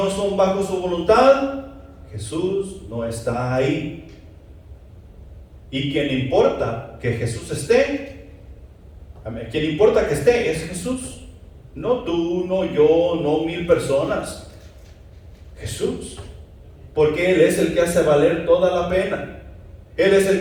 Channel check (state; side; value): identical; both; correlation 1.00